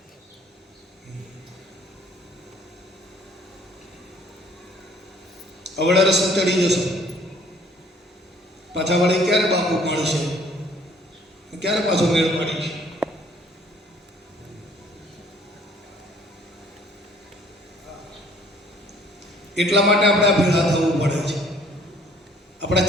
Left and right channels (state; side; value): normal; both; correlation 0.58